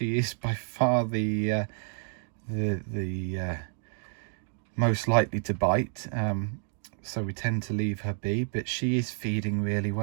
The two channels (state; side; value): silent; left; 58 dB below the other